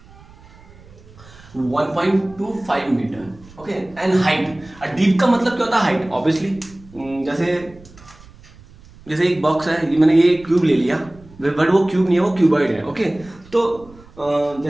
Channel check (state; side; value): noise; right; rumble, 23 dB below the sound